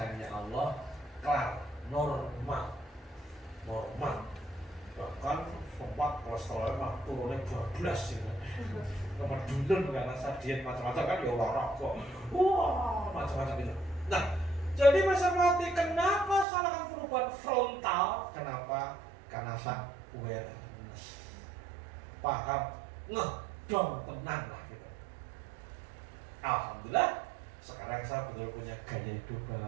Allah kelar, normal. Bahkan sempat kolesterolnya mah turunnya 12 gitu. Kemudian karena saya diet macam-macam kan ya olahraga. Wah, macam-macam itu. Nah, jadi masa mati kenapa salahkan perubahan frontal? Kenapa? Karena saya awareness. Paham, ngedong tenang lah gitu. Alhamdulillah, sekarang saya betul punya gaya hidup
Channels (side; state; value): left; drops out; at 16.4 s